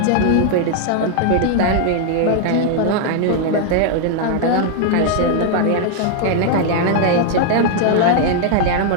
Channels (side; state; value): both; different; correlation 0.00